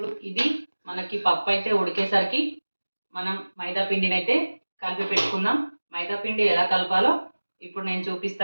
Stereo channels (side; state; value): both; inverted; correlation -1.00